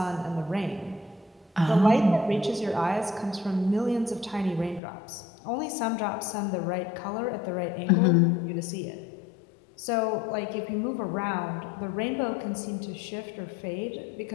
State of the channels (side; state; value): right; drops out; at 4.8 s